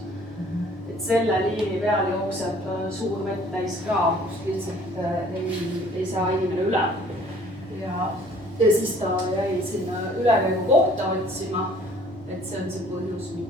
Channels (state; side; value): normal; both; correlation 0.55